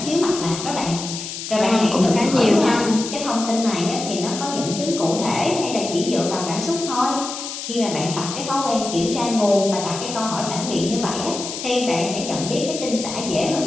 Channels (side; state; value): left; noise; hiss, 7 dB below the sound